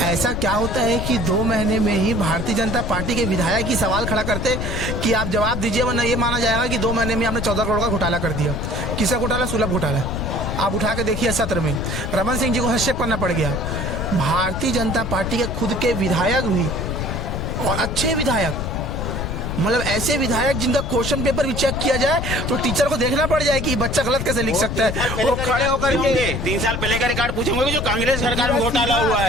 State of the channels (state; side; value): noise; left; rumble, 4 dB below the sound